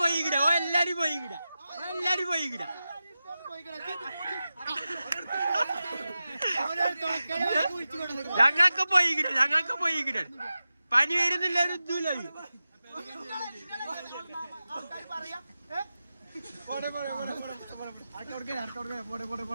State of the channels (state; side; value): inverted; both; correlation -0.93